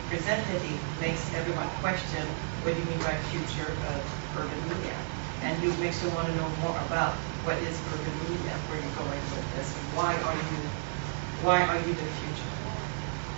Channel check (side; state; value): left; silent; digital silence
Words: present it, it makes everyone question what do you mean by future of urban media, and it makes you want to know more about what is urban media, where you're going with this, and why are you the future?